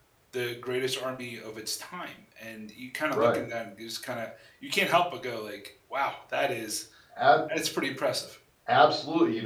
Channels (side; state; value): both; identical; correlation 1.00